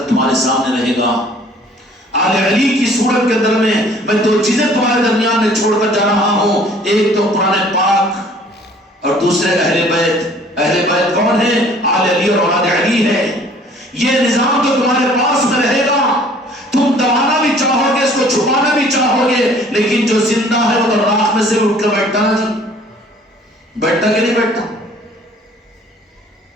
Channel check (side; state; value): both; normal; correlation 0.54